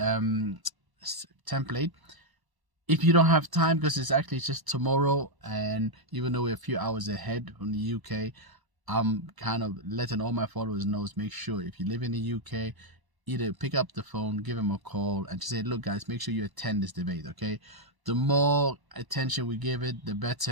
template. If you don't have time, because it's actually just tomorrow, and even though we're a few hours ahead from the UK, I'm kind of letting all my followers know, make sure if you live in the UK, either pick up the phone, give them a call, and just say, look guys, make sure you attend this debate, okay? The more attention we give it, the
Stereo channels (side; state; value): left; late; 1.1 ms